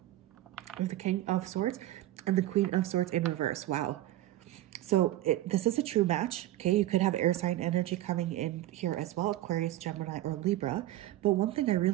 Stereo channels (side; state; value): left; quieter; 14.8 dB